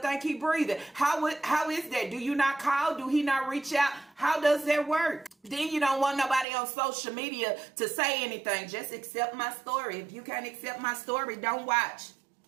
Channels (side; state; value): left; drops out; at 6.5 s